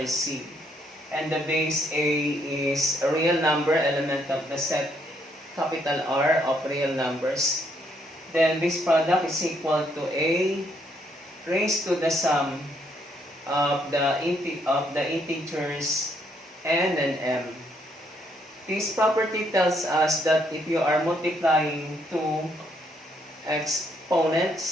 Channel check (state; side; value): normal; both; correlation 0.71